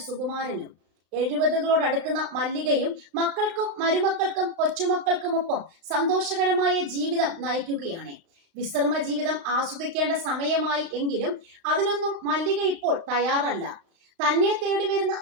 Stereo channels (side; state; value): left; late; 35 ms